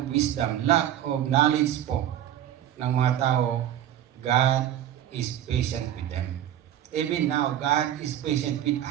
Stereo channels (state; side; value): quieter; left; 11.4 dB